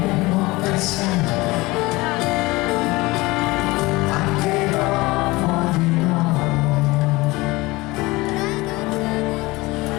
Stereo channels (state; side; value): quieter; right; 21.7 dB